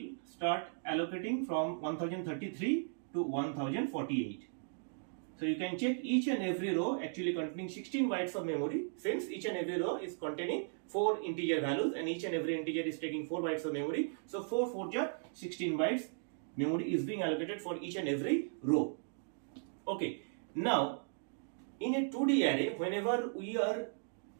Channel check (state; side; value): silent; left; digital silence